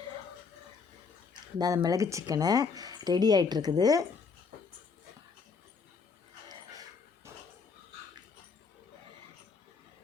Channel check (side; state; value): right; quieter; 5.2 dB